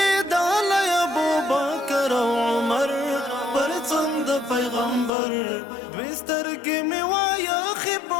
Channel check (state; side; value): drops out; right; at 5.1 s